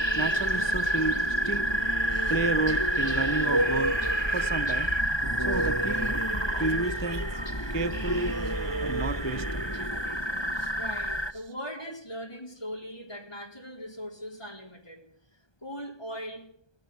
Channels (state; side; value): late; right; 1.2 ms